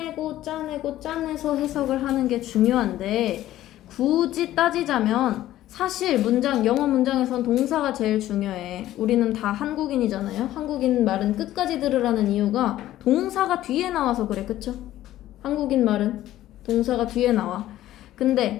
해석을 하는 게 중요한데, 굳이 따지자면 사실 영어 문장에선 동사가 제일 중요해. 우리는 다 한국인이잖아요. 한국인 말은 끝까지 들으라는 이유가 동사가 뒤에 나와서 그래. 그쵸? 한국인 말은 동사가 뒤에 나와.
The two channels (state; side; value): quieter; right; 14.0 dB